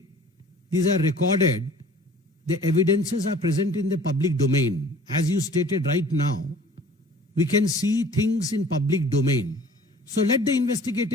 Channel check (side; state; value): both; normal; correlation 0.48